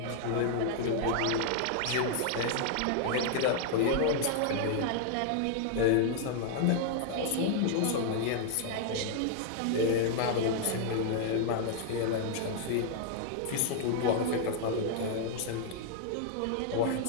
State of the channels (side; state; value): both; different; correlation 0.00